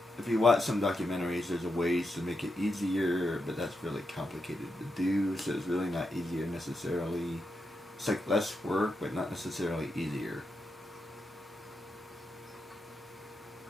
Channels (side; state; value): both; normal; correlation 0.85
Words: some documentaries, there's ways to make it easier, but that's really complicated to do, so it's really not easier necessarily. It's like less work, but not necessarily easier.